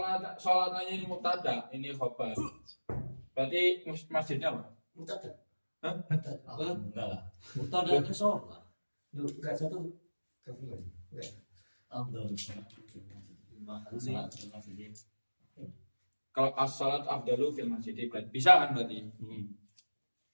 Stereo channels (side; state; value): both; inverted; correlation -1.00